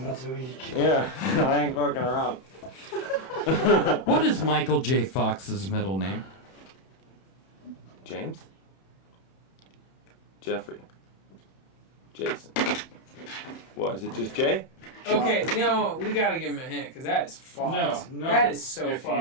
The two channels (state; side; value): late; right; 31 ms